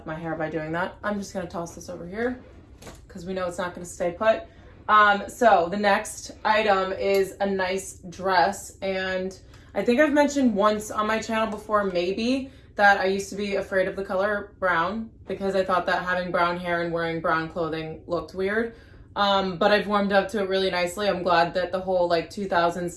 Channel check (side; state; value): both; identical; correlation 1.00